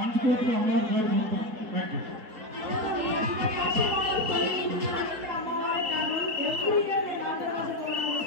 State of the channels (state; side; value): late; left; 3.7 ms